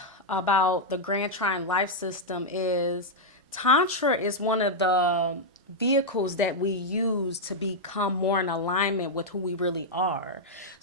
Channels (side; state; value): both; normal; correlation -0.03